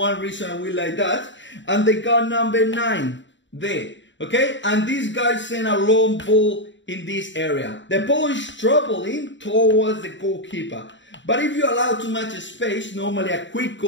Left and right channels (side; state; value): right; late; 0.54 ms